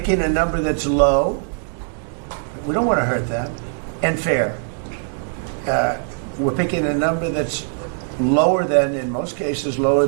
a number that's low. We don't want to hurt them. And fair. We're picking a number that's lower than, in most cases, lower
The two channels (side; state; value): left; silent; digital silence